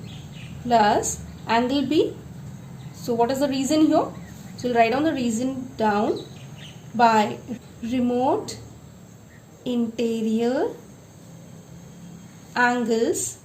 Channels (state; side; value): identical; both; correlation 1.00